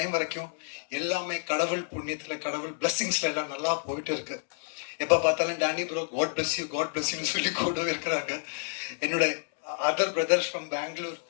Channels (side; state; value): right; silent; digital silence